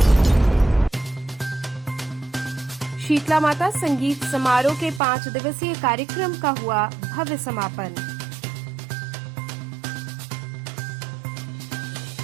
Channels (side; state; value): left; drops out; at 5.0 s